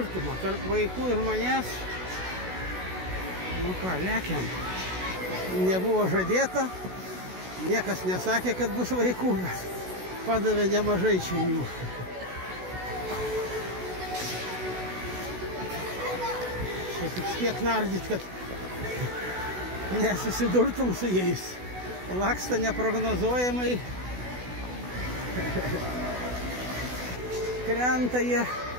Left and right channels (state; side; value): late; left; 16 ms